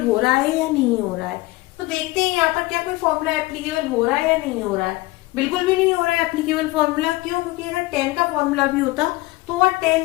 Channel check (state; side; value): quieter; right; 20.4 dB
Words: हो रहा है या नहीं हो रहा है। तो देखते हैं यहाँ पर क्या कोई फॉर्मूला एप्लीकेबल हो रहा है या नहीं हो रहा है। बिल्कुल भी नहीं हो रहा है एप्लीकेबल फॉर्मूला। क्यों? क्योंकि अगर 10 का फॉर्मूला भी होता तो वह